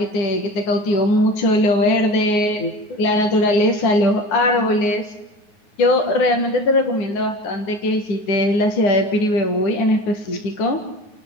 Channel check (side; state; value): right; late; 9.5 ms